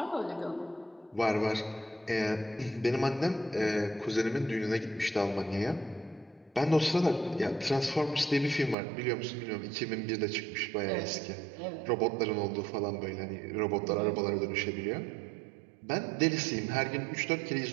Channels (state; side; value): drops out; left; at 8.8 s